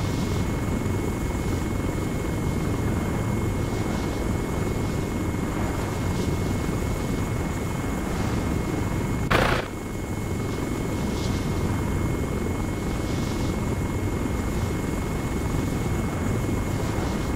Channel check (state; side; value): identical; both; correlation 1.00